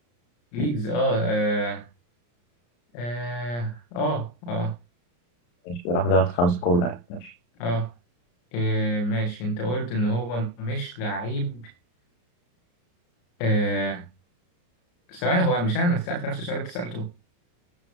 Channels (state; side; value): late; right; 34 ms